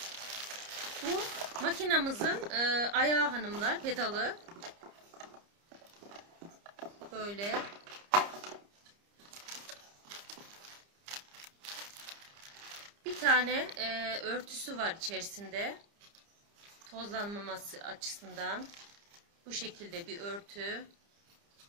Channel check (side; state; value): left; late; 30 ms